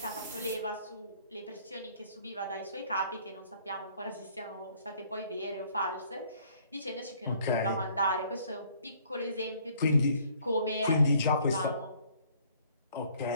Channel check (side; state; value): both; inverted; correlation -0.60